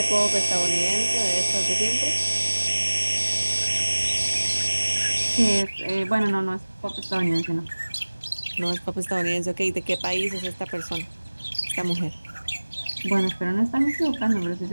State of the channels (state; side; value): inverted; both; correlation -1.00